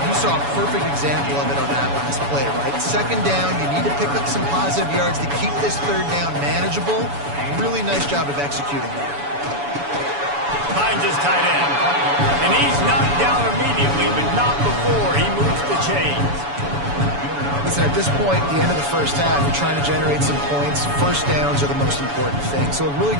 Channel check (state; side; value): late; left; 7.0 ms